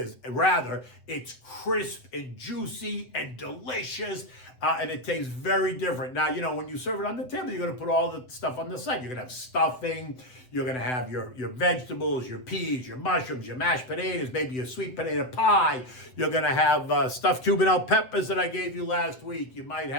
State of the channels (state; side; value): late; right; 7.9 ms